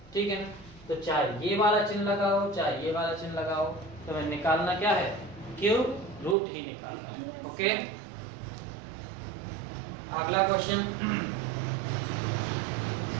ठीक है ना। तो चाहे ये वाला चिन्ह लगाओ चाहे ये वाला चिन्ह लगाओ, तो हमें निकालना क्या है, क्यूब रूट ही निकालना है। ओके, अगला क्वेश्चन।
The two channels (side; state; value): left; drops out; at 6.4 s